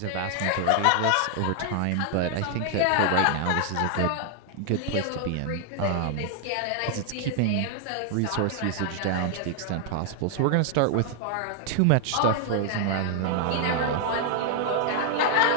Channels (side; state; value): both; different; correlation 0.00